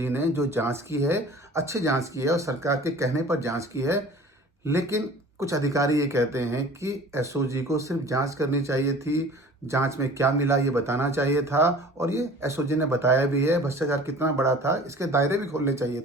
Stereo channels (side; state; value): both; normal; correlation 0.44